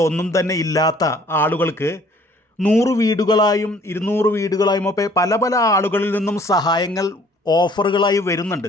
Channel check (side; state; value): both; normal; correlation 0.57